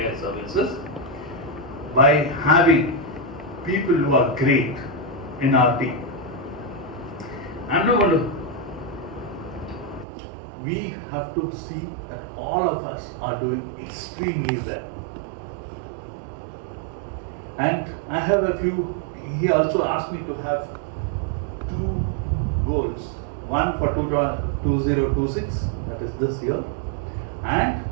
services by having people who are great in our team. I'm not going to. We have to see that all of us are doing extremely well. And I have a few, he also asked me to have two goals. one for 2026, that is this year, and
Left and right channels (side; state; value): left; drops out; at 10.1 s